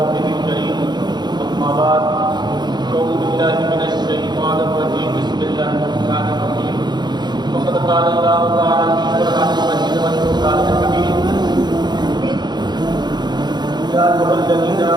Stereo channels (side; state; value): left; late; 0.21 ms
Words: الكريم، أما بعد، أعوذ بالله من الشيطان الرجيم، بسم الله الرحمن الرحيم۔ وقد قال الله تعالى في القرآن المجيد والفرقان الحميد: يا أيها الذين